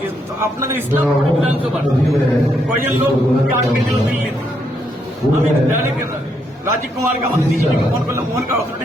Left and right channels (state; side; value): normal; both; correlation 0.76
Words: আপনাদের ইসলামপুর বিধানসভার কয়েকজন লোক আটকে দিল দিল্লিতে। আমি ডাইরেক্ট রাজীব কুমারকে, আমাদের ডিজিপিকে ফোন করলাম, মোহনকার